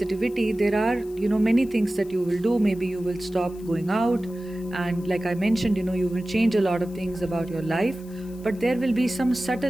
there are, many things that you will do. Maybe you will stop going out, and like I mentioned, you will change a lot of things about your life, but there will be some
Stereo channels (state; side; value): noise; left; hiss, 25 dB below the sound